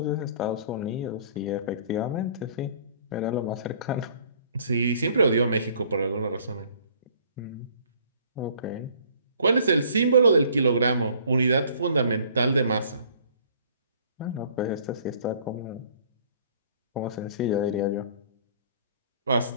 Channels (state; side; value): inverted; both; correlation -0.56